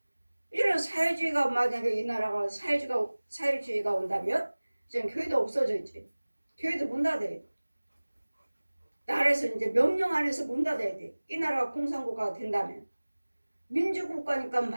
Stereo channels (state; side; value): inverted; both; correlation -1.00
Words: 이런 사회주의가 만약에 이 나라가 사회주의가 온다면 지금 교회도 없어져 있지. 교회도 문 닫아야 돼. 나라에서 이제 명령 안에서 문 닫아야 돼. 이 나라가 공산국가가 된다면 민주국가니까